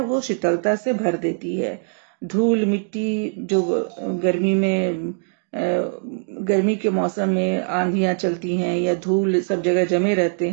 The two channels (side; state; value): left; silent; 58 dB below the other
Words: वो शीतलता से भर देती है। धूल मिट्टी जो गर्मी के मौसम में आंधियां चलती हैं या धूल सब जगह जमे रहते